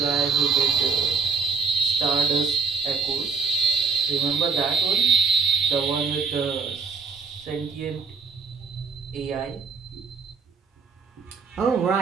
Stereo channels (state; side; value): quieter; left; 5.3 dB